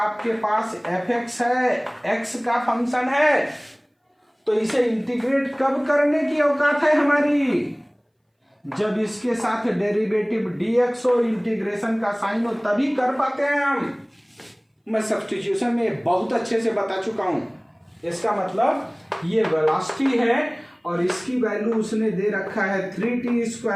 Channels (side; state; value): both; identical; correlation 1.00